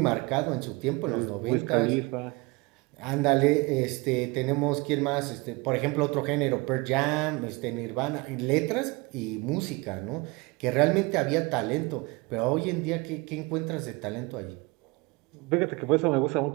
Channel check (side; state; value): left; quieter; 25.6 dB